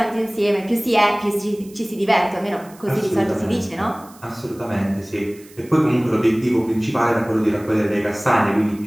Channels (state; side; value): noise; right; hiss, 24 dB below the sound